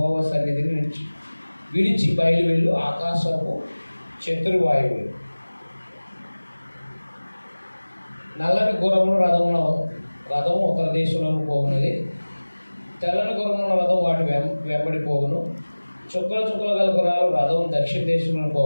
సన్నిధిని విడిచి బయలు వెళ్ళు ఆకాశపు చతుర్వాయువులు. నల్లని గుర్రముల రథము ఉత్తర దేశంలోకి పోగున్నది. తెల్లని గుర్రముల రథం వాటి వెంబడి పోగును. చుక్కల గల గుర్రాలు రథం దక్షిణ దేశంలో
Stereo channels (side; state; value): both; inverted; correlation -1.00